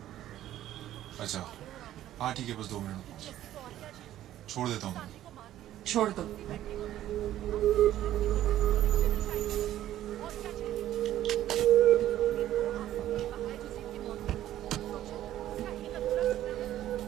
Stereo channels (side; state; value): left; quieter; 12.9 dB